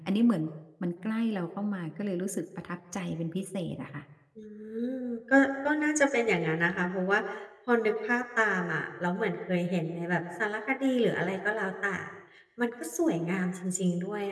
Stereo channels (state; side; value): identical; both; correlation 1.00